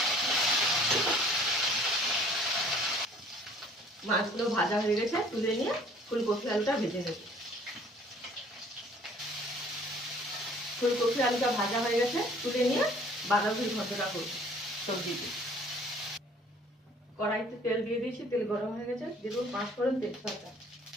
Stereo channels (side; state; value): both; normal; correlation 0.54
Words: মাছগুলো ভাজা হয়ে গেছে, তুলে নিয়ে ফুলকপি আলুটা ভেজে নেব। ফুলকপি আলুটা ভাজা হয়ে গেছে, তুলে নিয়ে বাঁধাকপির ঘন্টটা করব সবজিতে। কড়াইতে তেল দিয়ে দিয়েছি, তেল গরম হয়ে গেছে, দিয়ে দেবো 5 ফোড়ন তেজপাতা